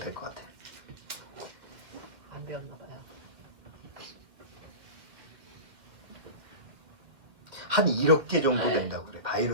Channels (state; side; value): late; left; 2.1 ms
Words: 것 같아. 안 배웠나 봐요. 한 1억 개 정도 된다고 그래.